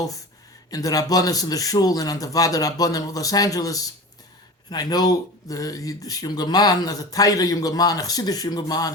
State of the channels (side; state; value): both; normal; correlation 0.33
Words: in the Rabbanis and the Shul and on the Vada Rabbanim of Los Angeles. And I know this younger man, as a Taira younger man, a Chassidic younger man,